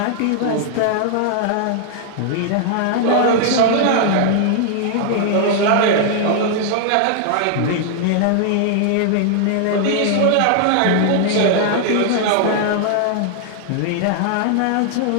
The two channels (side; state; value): both; different; correlation 0.00